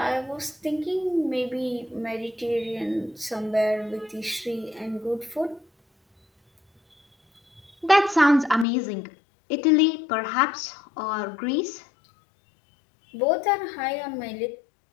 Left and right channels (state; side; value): drops out; right; at 8.7 s